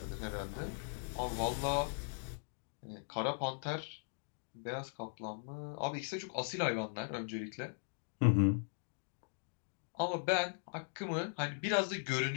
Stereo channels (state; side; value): silent; right; digital silence